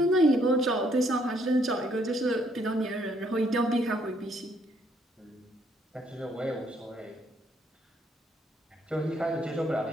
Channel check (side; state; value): both; normal; correlation 0.69